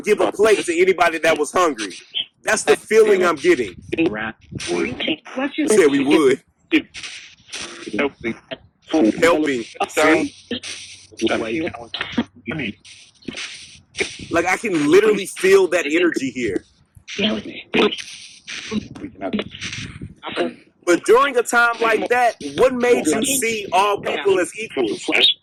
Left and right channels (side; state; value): both; identical; correlation 1.00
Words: give a plate to anybody that was hungry. That's the feeling I'm getting. Said we would. Helping. See? Like I can literally feel that energy here. But during a time like that, what made you see all people as equals?